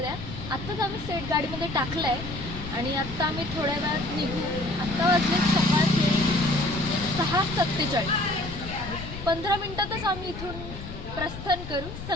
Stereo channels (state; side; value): noise; left; rumble, 10 dB below the sound